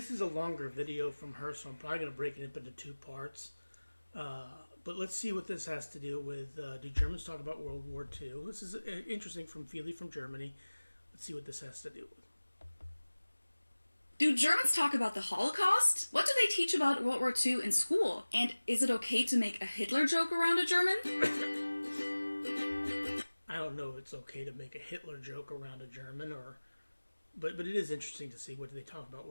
is a longer video from her, so I'm probably going to break it up into two parts. But let's see what this has to do with do Germans talk about World War II? This is interesting from Feely from Germany. Let's see what this has to do with. Do Germans talk about the Holocaust? What do they teach about World War II in school? And is it okay to make a Hitler joke around a German? I don't know if it's okay to make a Hitler joke around a German, but it is interesting to see what do they talk about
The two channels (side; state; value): both; inverted; correlation -1.00